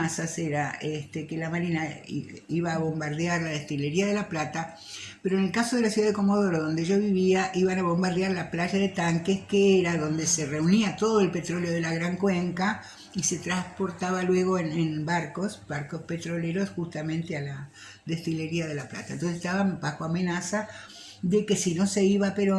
era que la Marina iba a bombardear la destilería de La Plata, pero en el caso de la ciudad de Comodoro, donde yo vivía, iban a bombardear la playa de Tanques, que era donde se reunía todo el petróleo de la Gran Cuenca y se transportaba luego en barcos petroleros justamente a la destilería de La Plata. Entonces estaban bajo amenaza de que si no se iba a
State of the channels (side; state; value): both; identical; correlation 1.00